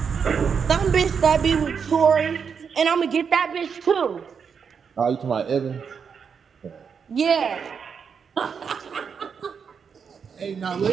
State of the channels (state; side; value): quieter; left; 6.5 dB